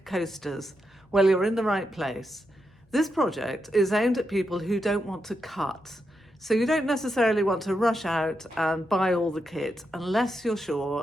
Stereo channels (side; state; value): both; normal; correlation 0.85